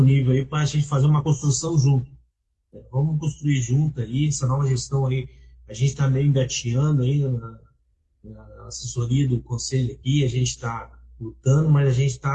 aí para a gente fazer uma construção junto. Vamos construir junto aí, essa nova gestão aí. A gente está meio engateando aí na assessoria do conselho aqui, a gente está lutando, mas a gente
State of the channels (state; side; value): identical; both; correlation 1.00